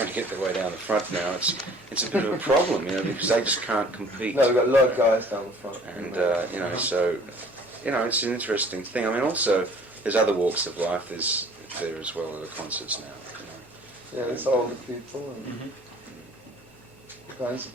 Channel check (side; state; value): both; normal; correlation 0.53